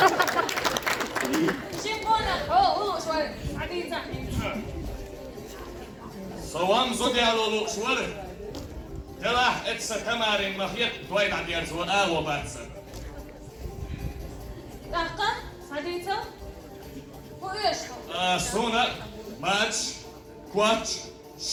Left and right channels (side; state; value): both; identical; correlation 1.00